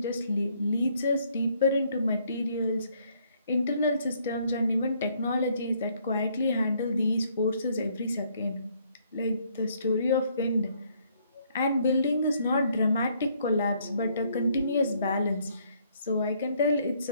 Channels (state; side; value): inverted; both; correlation -0.68